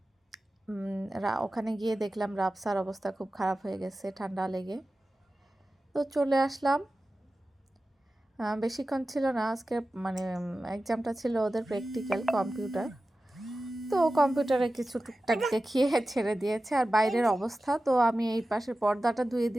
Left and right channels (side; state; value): both; normal; correlation 0.95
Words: ওখানে গিয়ে দেখলাম রাবসার অবস্থা খুব খারাপ হয়ে গেছে ঠান্ডা লেগে। তো চলে আসলাম। বেশিক্ষণ ছিল না, আজকে মানে এক্সামটা ছিল ওদের প্র্যাকটিক্যাল কম্পিউটার। তো কম্পিউটারে কিছু টুকটাক দেখিয়ে ছেড়ে দিয়েছে। আর বাইরের অবস্থা, তো আমি এই পাশের পর্দাটা ধুয়ে